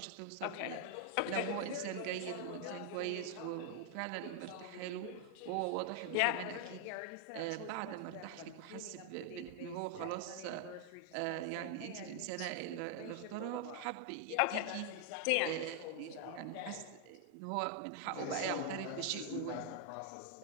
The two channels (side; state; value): both; different; correlation 0.00